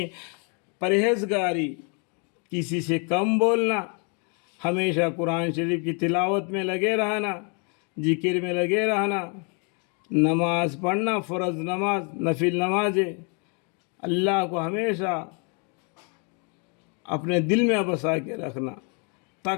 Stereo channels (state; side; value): quieter; right; 36.3 dB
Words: پرہیزگاری، کسی سے کم بولنا، ہمیشہ قرآن شریف کی تلاوت میں لگے رہنا، ذکر میں لگے رہنا، نماز پڑھنا، فرض نماز، نفل نمازیں، اللہ کو ہمیشہ اپنے دل میں بسا کے رکھنا،